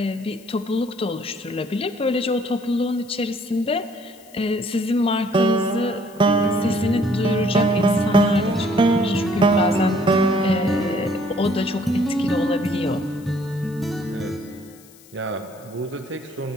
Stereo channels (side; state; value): left; noise; hiss, 25 dB below the sound